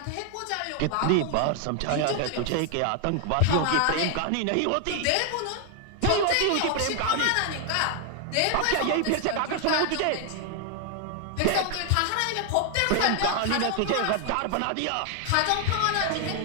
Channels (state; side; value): different; both; correlation 0.00